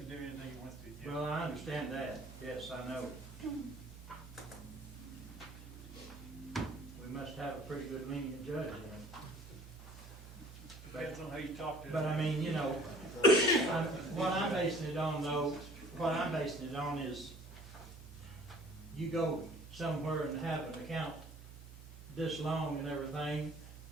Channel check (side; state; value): both; normal; correlation 0.52